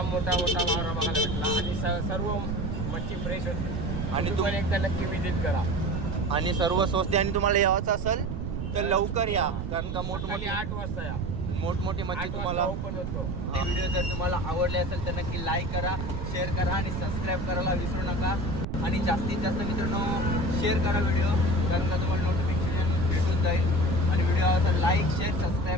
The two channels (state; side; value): noise; right; rumble, 4 dB below the sound